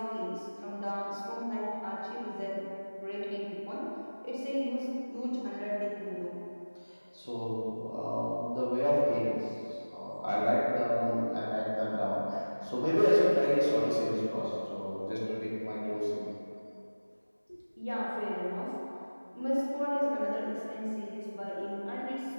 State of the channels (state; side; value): inverted; both; correlation -1.00